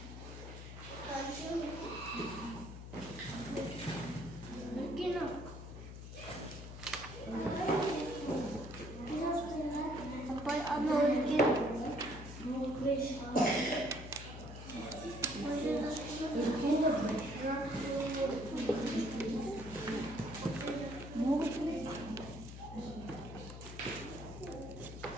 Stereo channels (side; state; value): left; noise; hum, 11 dB below the sound